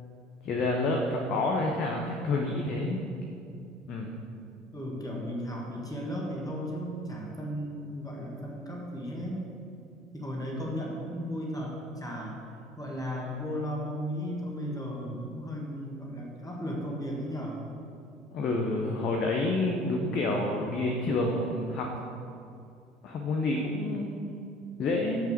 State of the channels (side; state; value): both; normal; correlation 0.50